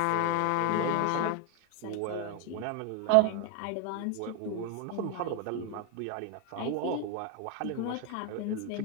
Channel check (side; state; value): both; different; correlation 0.01